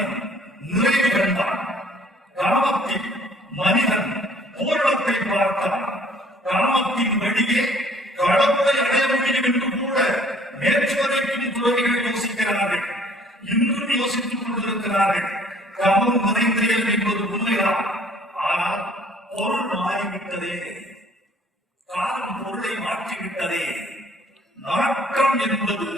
நிறைவு கண்டான். காமத்தில் மனிதன் பூரணத்தை பார்த்தான். காமத்தின் வழியே கடவுளை அடைய முடியும் என்று கூட நேற்று வரைக்கும் துறவிகள் யோசிக்கிறார்கள், இன்னும் யோசித்துக் கொண்டிருக்கிறார்கள். காமம் நிறைந்தேன் என்பது உண்மைதான். ஆனால் பொருள் மாறிவிட்டதே, காலம் பொருளை மாற்றிவிட்டதே. நாட்டம் என்பது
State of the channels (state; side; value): normal; both; correlation 0.57